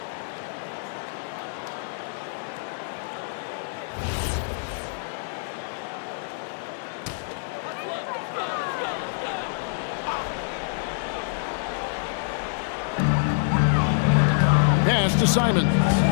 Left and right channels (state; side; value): silent; right; digital silence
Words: Pass to Simons.